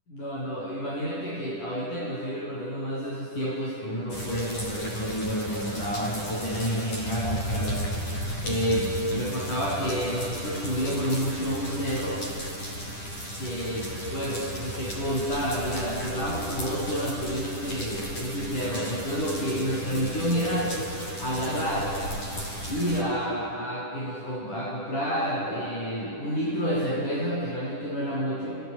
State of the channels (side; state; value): right; late; 10 ms